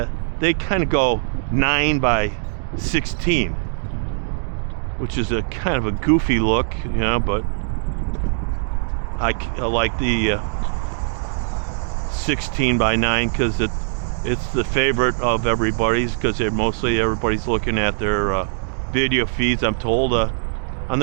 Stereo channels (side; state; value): left; silent; digital silence